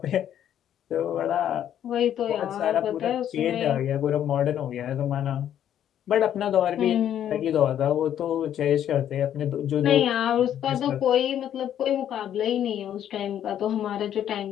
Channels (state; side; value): quieter; right; 10.4 dB